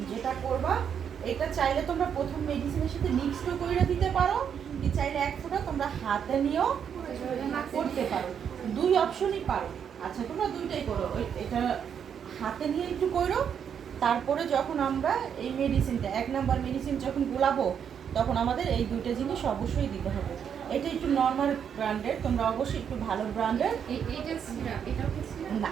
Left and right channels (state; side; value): quieter; left; 7.9 dB